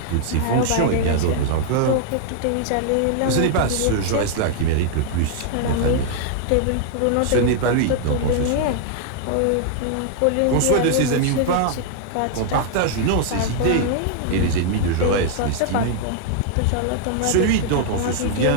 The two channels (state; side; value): different; both; correlation 0.00